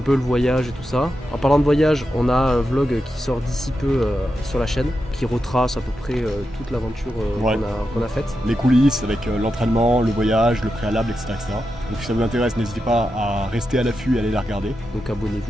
peu le voyage et tout ça. En parlant de voyage, on a un vlog qui sort d'ici peu sur la chaîne, qui retrace à peu près toute l'aventure qu'on a faite. Les coulisses avec l'entraînement, le voyage, le préalable, etc., etc. Donc si ça vous intéresse, n'hésitez pas à rester à l'affût et aller la regarder. Donc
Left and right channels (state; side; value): normal; both; correlation 0.88